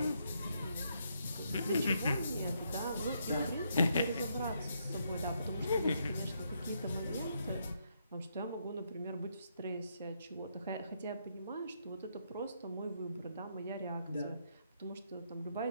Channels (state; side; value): inverted; both; correlation -0.76